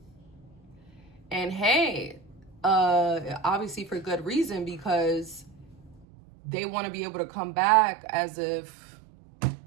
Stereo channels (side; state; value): left; drops out; at 6.1 s